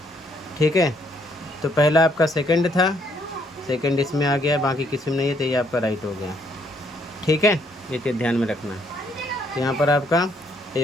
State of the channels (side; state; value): both; normal; correlation 0.69